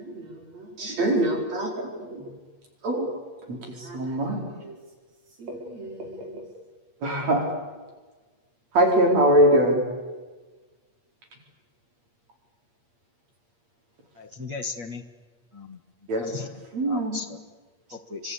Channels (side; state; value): left; late; 8.5 ms